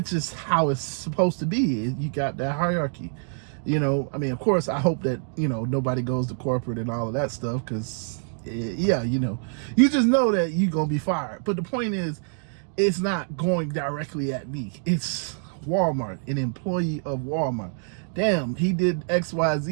is how it's supposed to be. You got that hierarchy. You know, I mean, of course, I hope that, nobody goes to corporate and all of that stuff because, you just know that you're going to be fired. But the point is, it's not going directly at me. It's Walmart, an employee of Walmart. Damn, he did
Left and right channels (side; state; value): left; silent; 61 dB below the other